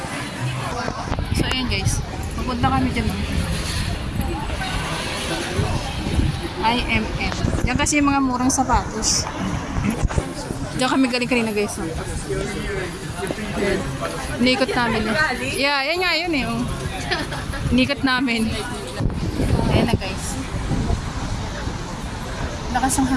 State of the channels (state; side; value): identical; both; correlation 1.00